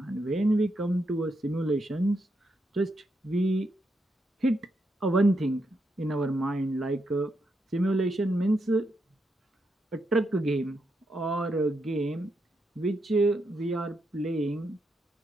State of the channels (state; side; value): normal; both; correlation 0.82